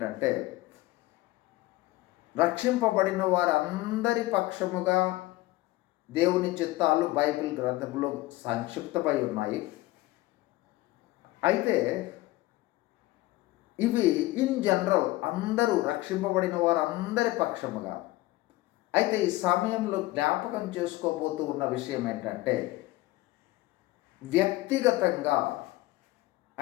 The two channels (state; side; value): quieter; right; 18.5 dB